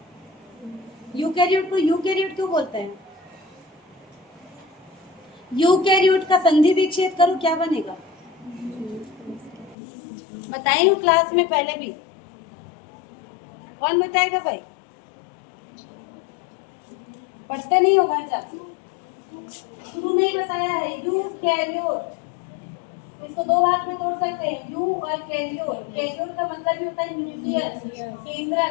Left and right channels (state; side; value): drops out; right; at 9.8 s